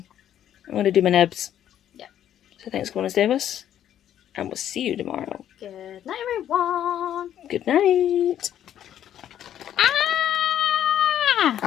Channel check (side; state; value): right; quieter; 10.7 dB